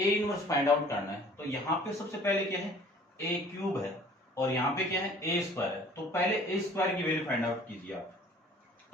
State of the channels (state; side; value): normal; both; correlation 0.51